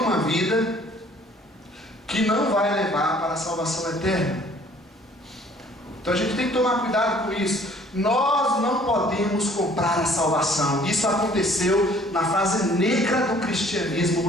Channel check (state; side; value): normal; both; correlation 0.56